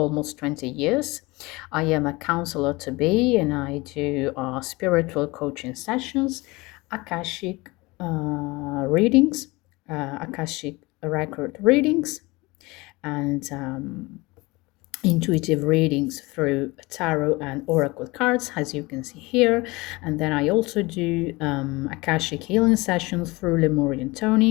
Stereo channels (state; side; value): quieter; right; 23.1 dB